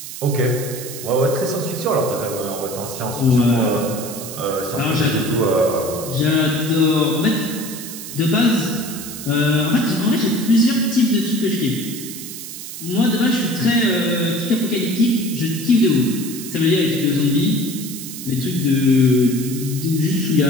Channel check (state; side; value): noise; right; hiss, 10 dB below the sound